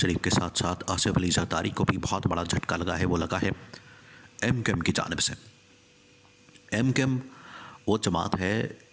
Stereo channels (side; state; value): both; identical; correlation 1.00